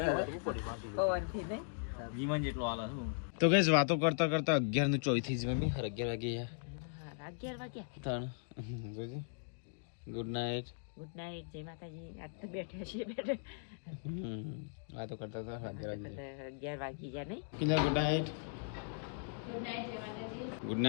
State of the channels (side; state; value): right; silent; digital silence